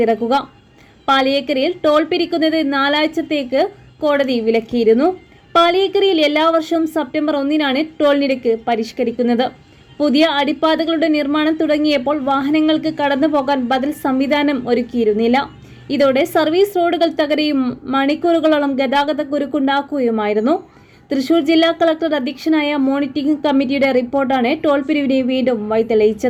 പാളിയേക്കരയിൽ ടോൾ പിരിക്കുന്നത് 4 ആഴ്ചത്തേക്ക് കോടതി വിലക്കിയിരുന്നു. പാളിയേക്കരയിൽ എല്ലാ വർഷവും സെപ്റ്റംബർ 1-നാണ് ടോൾ നിരക്ക് പരിഷ്കരിക്കുന്നത്. പുതിയ അടിപ്പാതകളുടെ നിർമ്മാണം തുടങ്ങിയപ്പോൾ വാഹനങ്ങൾക്ക് കടന്നുപോകാൻ ബദൽ സംവിധാനം ഒരുക്കിയിരുന്നില്ല. ഇതോടെ സർവീസ് റോഡുകൾ തകരുകയും മണിക്കൂറുകളോളം ഗതാഗതക്കുരുക്കുണ്ടാക്കുകയുമായിരുന്നു. തൃശൂർ ജില്ലാ കളക്ടർ അധ്യക്ഷനായ മോണിറ്ററിംഗ് കമ്മിറ്റിയുടെ റിപ്പോർട്ടാണ് ടോൾ പിരിവിനെ വീണ്ടും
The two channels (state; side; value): identical; both; correlation 1.00